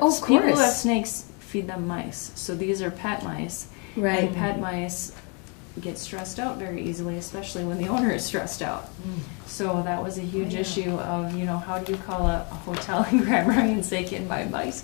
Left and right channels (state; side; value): quieter; right; 34.6 dB